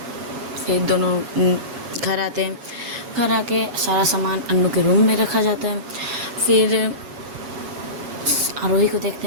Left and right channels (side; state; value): left; late; 7.2 ms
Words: फिर दोनों घर आते हैं। घर आके सारा सामान अन्नू के रूम में रखा जाता है। फिर आरोही को देखते